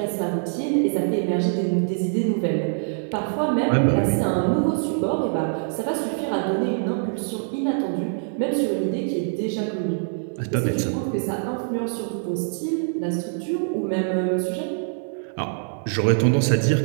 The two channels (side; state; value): left; silent; 63 dB below the other